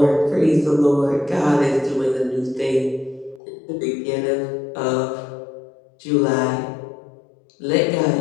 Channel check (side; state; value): right; drops out; at 3.4 s